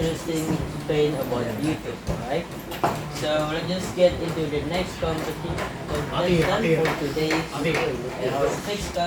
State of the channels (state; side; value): identical; both; correlation 1.00